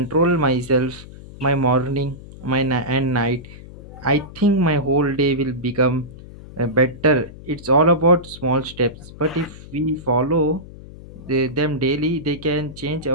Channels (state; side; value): noise; left; hum, 16 dB below the sound